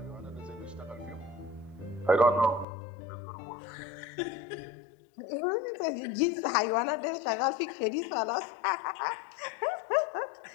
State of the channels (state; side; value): drops out; right; at 2.7 s